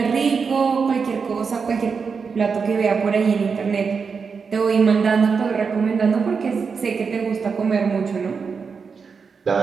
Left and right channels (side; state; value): left; quieter; 5.5 dB